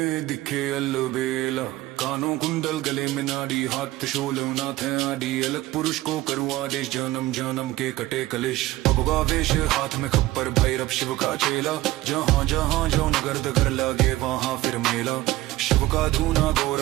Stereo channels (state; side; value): quieter; left; 17.2 dB